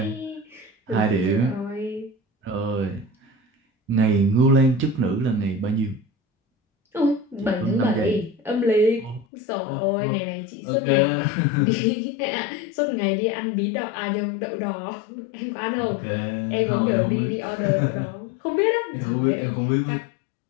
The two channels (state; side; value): drops out; right; at 9.2 s